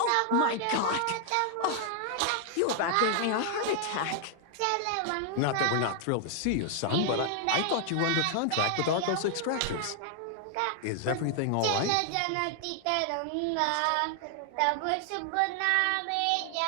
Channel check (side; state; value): both; different; correlation 0.00